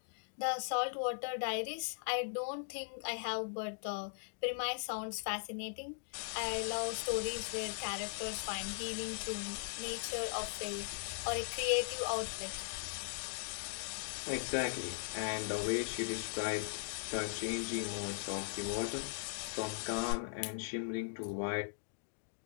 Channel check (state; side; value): silent; right; digital silence